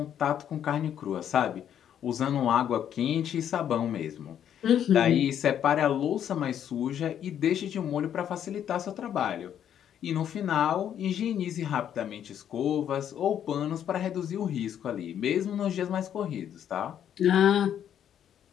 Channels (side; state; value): right; quieter; 9.7 dB